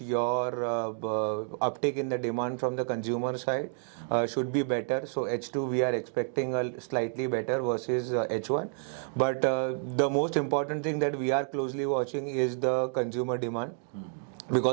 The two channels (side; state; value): left; silent; 58 dB below the other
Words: your uptick in the demand from the consumer side should be better. So H2 we are expecting a slightly better versus H1. Yeah. But the most important thing that we are closely watching is the consumer demand,